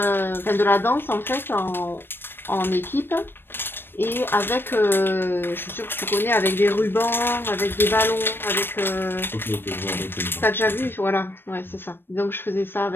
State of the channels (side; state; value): right; late; 0.099 ms